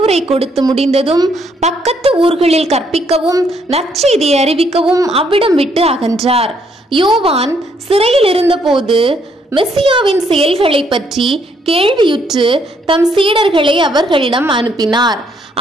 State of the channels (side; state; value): both; normal; correlation 0.71